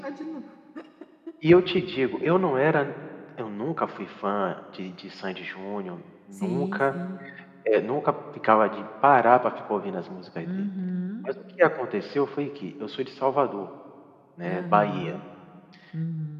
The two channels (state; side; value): identical; both; correlation 1.00